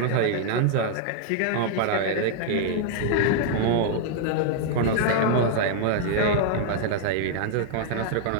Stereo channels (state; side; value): different; both; correlation -0.01